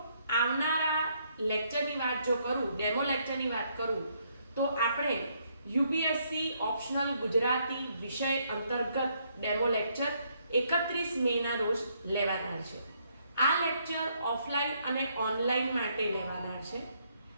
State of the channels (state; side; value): inverted; both; correlation -0.72